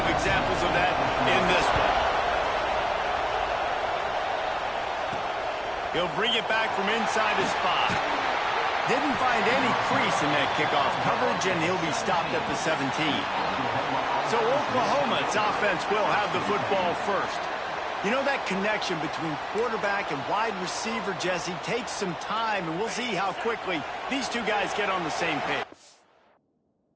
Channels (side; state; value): both; identical; correlation 1.00